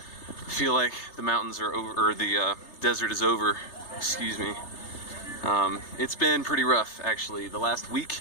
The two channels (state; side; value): late; right; 3.3 ms